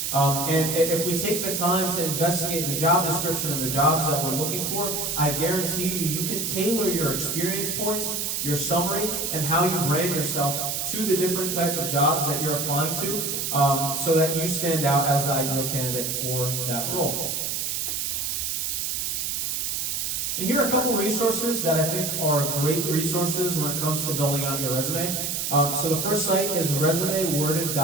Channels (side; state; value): right; noise; hiss, 1 dB below the sound